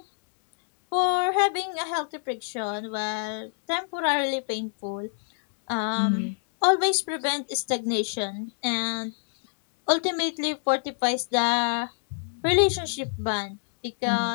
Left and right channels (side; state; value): right; silent; digital silence